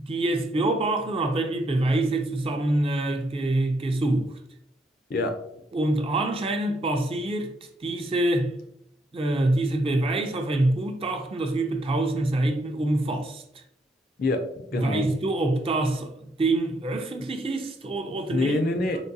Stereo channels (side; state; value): both; normal; correlation 0.74